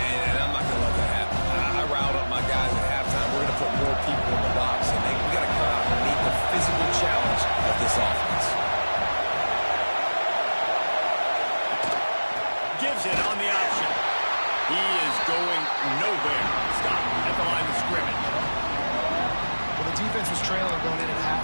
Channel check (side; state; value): both; inverted; correlation -1.00